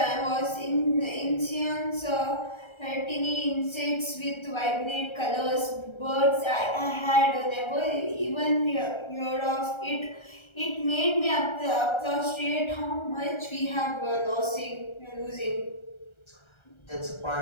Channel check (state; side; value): late; right; 1.3 ms